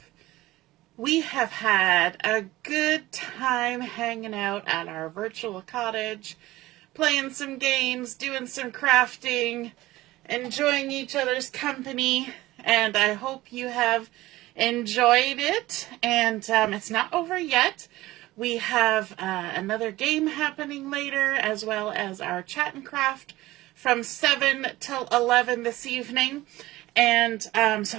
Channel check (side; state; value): left; quieter; 17.6 dB